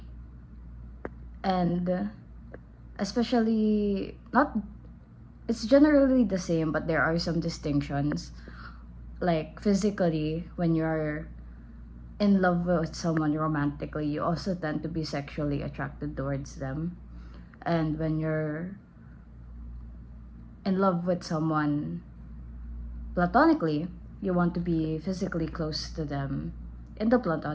and especially not it's generally the same, but there are some distinctions. Like physically, when you're in love with someone romantically, you also tend to be sexually attracted towards them. And when you're in love with someone platonically, you want to be physically close to them in the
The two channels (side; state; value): both; identical; correlation 1.00